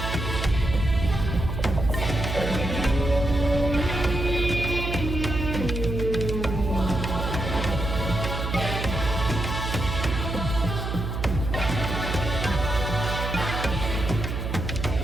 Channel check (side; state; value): right; noise; hum, 3 dB below the sound